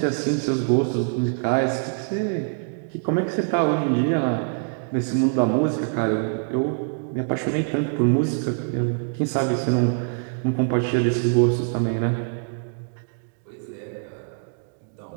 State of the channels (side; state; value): left; silent; digital silence